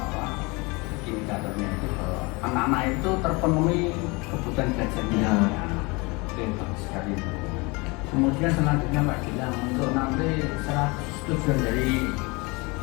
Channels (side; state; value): right; quieter; 26.6 dB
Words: indikatornya itu bahwa anak-anak itu terpenuhi kebutuhan belajarnya. Ya. Oke, bagus sekali. Kemudian selanjutnya Pak Gilang, untuk nanti tujuan dari